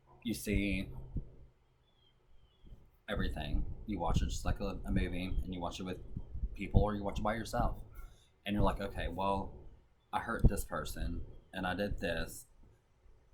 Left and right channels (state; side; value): identical; both; correlation 1.00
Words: you see everything. You watch it just like a movie, and you watch it with people, or you watch it by yourself. And you're like, okay, well, I hurt this person, and I did this.